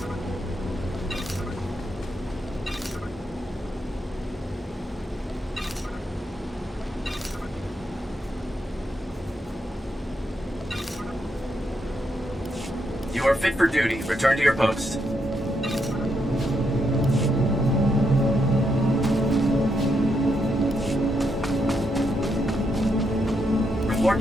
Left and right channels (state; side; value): normal; both; correlation 0.80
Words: You are fit for duty. Return to your post. Report